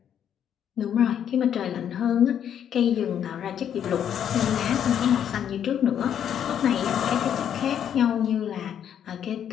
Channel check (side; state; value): right; quieter; 9.2 dB